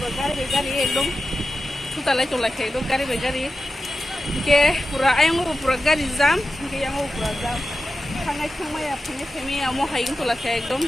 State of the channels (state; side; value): normal; both; correlation 0.92